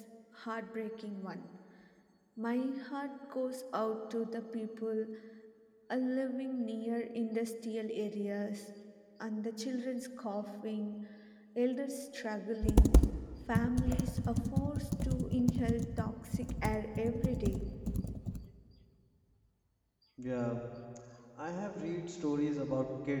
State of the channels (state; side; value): identical; both; correlation 1.00